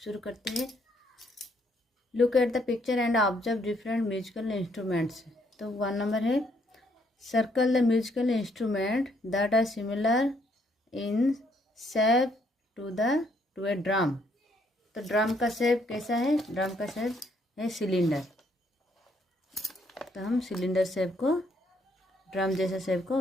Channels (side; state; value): both; normal; correlation 0.70